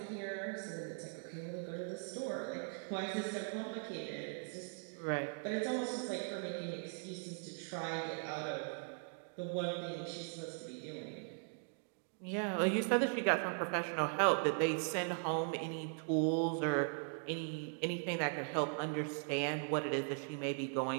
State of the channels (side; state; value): left; silent; 51 dB below the other